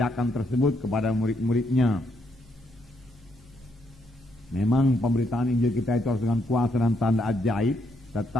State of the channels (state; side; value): normal; both; correlation 0.75